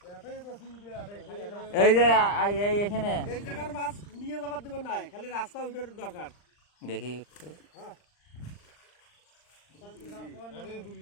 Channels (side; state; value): right; late; 39 ms